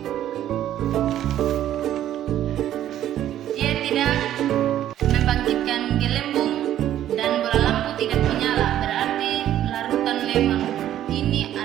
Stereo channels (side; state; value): left; quieter; 11.9 dB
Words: dia tidak membangkitkan gelembung dan bola lampu tidak menyala. Berarti larutan lemon ini